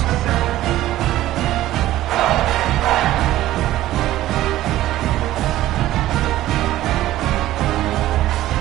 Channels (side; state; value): left; quieter; 14.7 dB